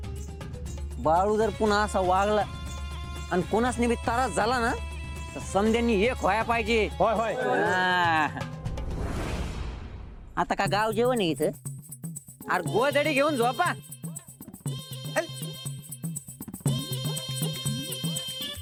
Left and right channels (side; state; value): both; identical; correlation 1.00